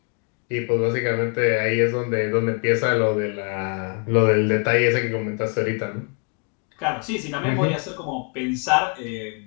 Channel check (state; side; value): quieter; right; 39.3 dB